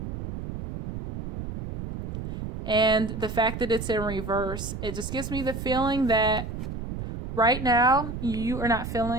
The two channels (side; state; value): right; noise; rumble, 7 dB below the sound